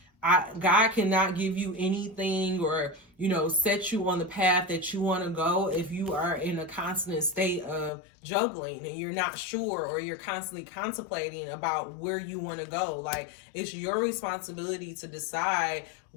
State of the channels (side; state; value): right; drops out; at 7.9 s